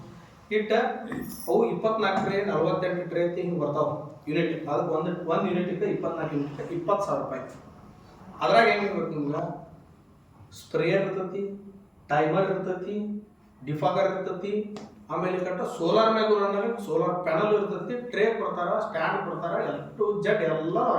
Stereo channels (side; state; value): both; identical; correlation 1.00